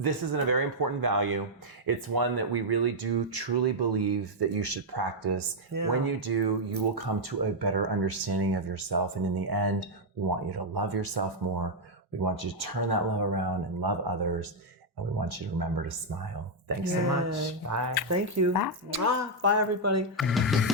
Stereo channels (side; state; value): both; normal; correlation -0.02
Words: is a very important value. It's one that we really do truly believe that you should practice. When you do, you will come to a better understanding of yourself. And in the end, we want you to love yourself more. We want you to turn that love around and love others. And we want you to remember to smile. Thanks so much. Bye. Thank you. Bye. Bye, everybody.